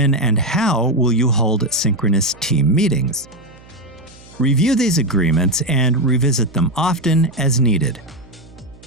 and how will you hold synchronous team meetings? Review these agreements and revisit them often as needed.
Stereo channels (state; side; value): noise; right; hum, 23 dB below the sound